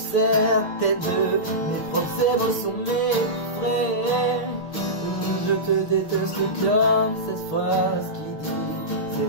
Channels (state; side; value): late; right; 6.5 ms